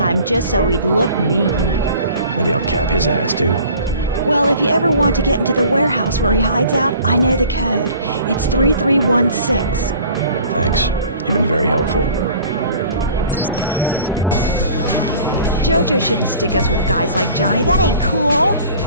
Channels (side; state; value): both; inverted; correlation -0.48